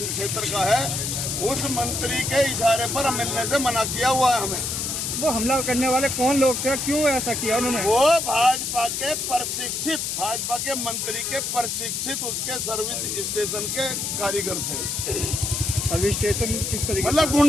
का है उस मंत्री के इशारे पर मिलने से मना किया हुआ है हमें। वो हमला करने वाले कौन लोग थे, क्यों ऐसा किया उन्होंने? वो भाजपा के प्रशिक्षित, भाजपा के मंत्री के प्रशिक्षित उसके सर्विस स्टेशन के कारीगर थे। सर्विस स्टेशन किस तरीके? मतलब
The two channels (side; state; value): left; noise; hiss, 2 dB below the sound